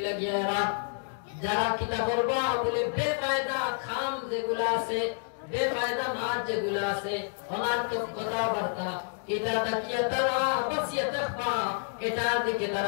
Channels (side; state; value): right; silent; digital silence